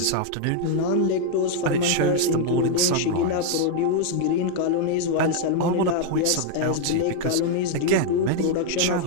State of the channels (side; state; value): both; different; correlation 0.00